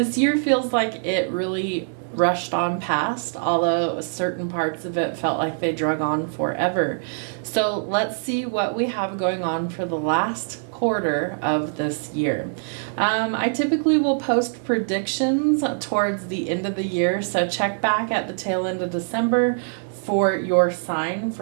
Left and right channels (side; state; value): left; silent; digital silence